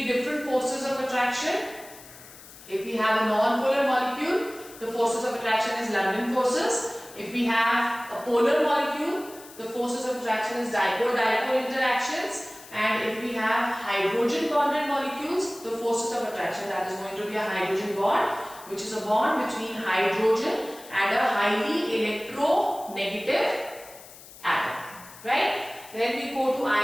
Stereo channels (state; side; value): noise; left; hiss, 19 dB below the sound